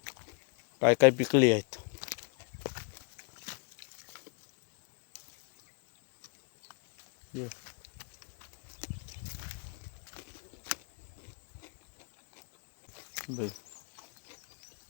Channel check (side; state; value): right; quieter; 36.2 dB